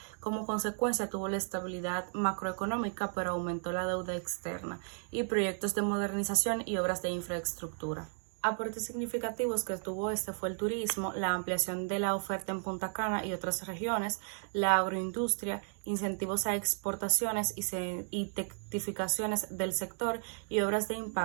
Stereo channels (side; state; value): left; silent; 55 dB below the other